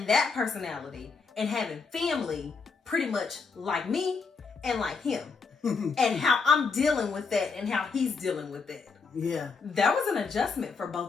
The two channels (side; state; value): right; quieter; 4.9 dB